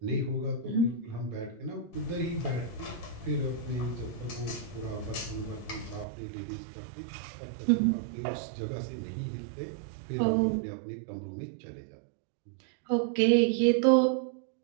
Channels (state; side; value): drops out; left; at 6.1 s